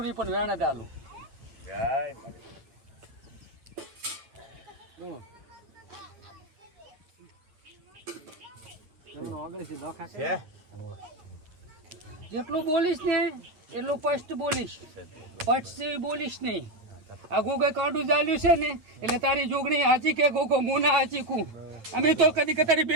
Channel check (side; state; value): left; late; 9.0 ms